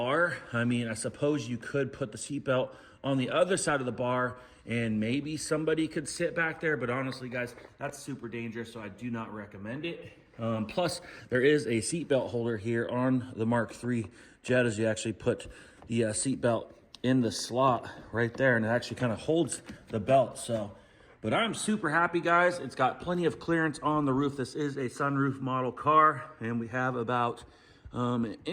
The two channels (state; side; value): identical; both; correlation 1.00